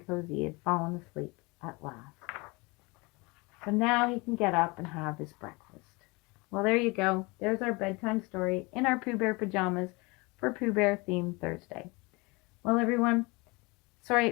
cozy he had fallen asleep at last. So now he can get up and have his breakfast. Well, there you go. There's our bedtime story in our Pooh Bear pajamas for Pooh Bear themed Thursday. Well, everyone, sorry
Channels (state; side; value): quieter; right; 26.2 dB